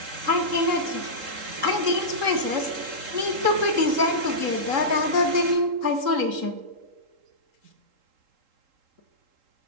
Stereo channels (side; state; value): left; late; 3.8 ms